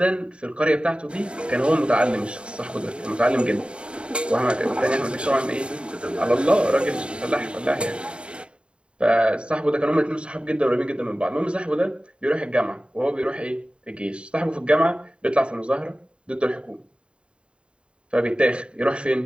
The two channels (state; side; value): late; left; 0.055 ms